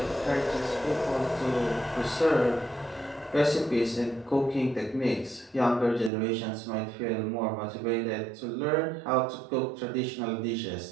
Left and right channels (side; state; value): left; drops out; at 6.1 s